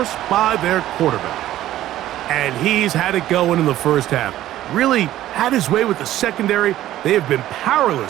by their quarterback. And he's had it going in the first half. Really had his way with the secondary. They have been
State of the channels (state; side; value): quieter; left; 13.7 dB